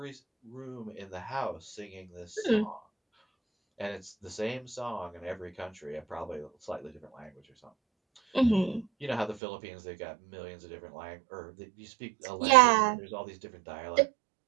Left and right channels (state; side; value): drops out; left; at 9.4 s